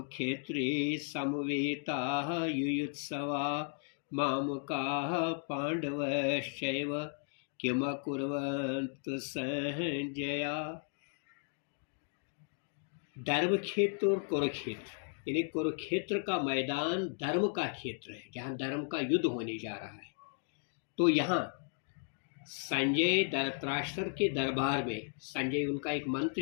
समवेताः युयुत्सवा मामकाः पांडवश्चैव किमकुर्वन्तु संजया। धर्म क्षेत्र और कुरुक्षेत्र, यानी कुरुक्षेत्र का मैदान धर्म का क्षेत्र है जहाँ धर्म का युद्ध होने जा रहा है। तो यहाँ संजय धृतराष्ट्र के दरबार में, संजय उनका एक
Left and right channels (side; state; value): right; silent; 54 dB below the other